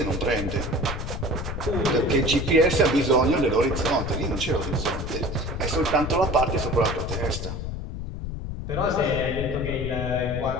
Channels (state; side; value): noise; left; rumble, 5 dB below the sound